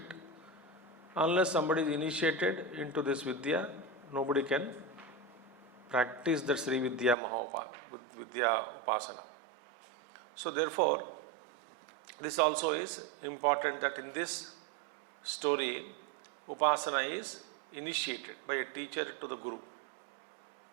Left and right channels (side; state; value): left; drops out; at 7.2 s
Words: Unless somebody is initiated into this Vidya, nobody can practice the Sri Vidya Vidya Upasana. So therefore, this also is important that in this story, Upasana is initiated by a teacher to the Guru.